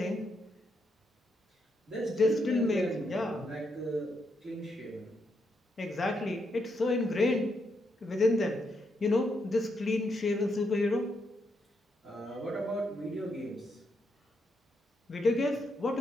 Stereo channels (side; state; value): both; normal; correlation 0.80